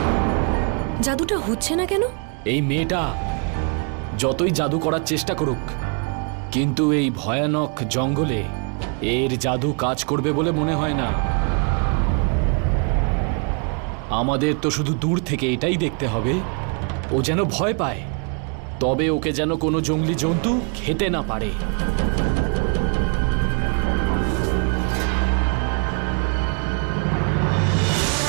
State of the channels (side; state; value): left; quieter; 38.7 dB